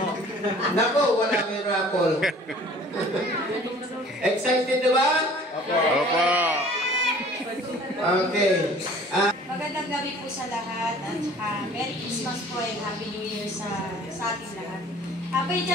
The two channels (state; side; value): normal; both; correlation 0.50